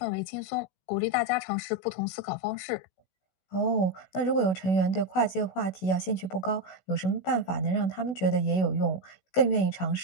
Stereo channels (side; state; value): right; late; 16 ms